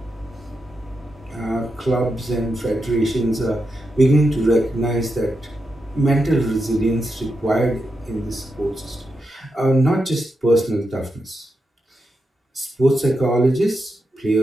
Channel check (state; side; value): normal; both; correlation 0.86